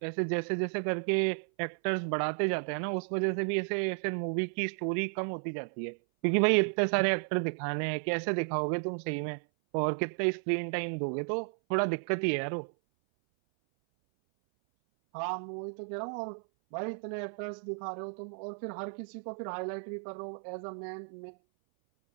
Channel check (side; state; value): left; silent; 56 dB below the other